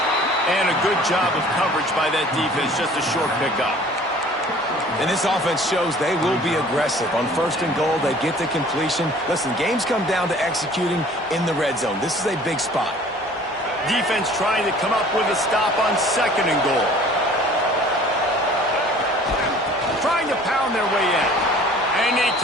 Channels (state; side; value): normal; both; correlation 0.50